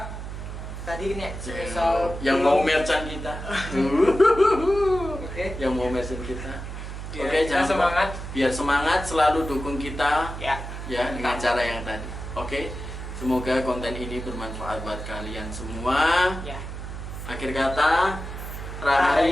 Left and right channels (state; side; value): noise; right; hum, 8 dB below the sound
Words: tadi ini spesial yang mau merchant kita. Oke. Yang mau merchant kita. Biar Oke, kita jangan lupa. semangat. Biar semangat, selalu dukung kita Ya. ya dengan cara yang tadi. Oke. Semoga konten ini bermanfaat buat kalian semua. Ya. Akhir kata,